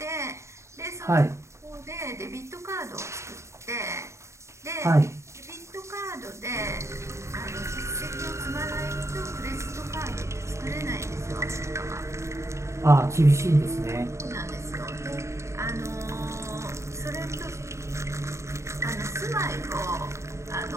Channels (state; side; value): late; left; 0.14 ms